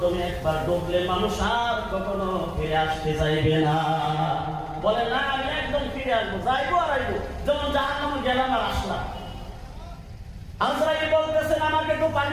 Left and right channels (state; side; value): identical; both; correlation 1.00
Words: একবার ঢুকলে মানুষ আর কখনো ফিরে আসতে চাইবে না। বলে না, আমি একদম ফিরে আসবো, যাইবো আর আইবো, যেমন জাহান্নামে গেলাম আর আসলাম। আজরাইল বলতেছেন, আমাকে তো